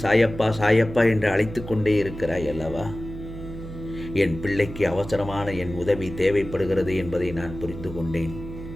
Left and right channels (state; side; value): noise; right; hum, 11 dB below the sound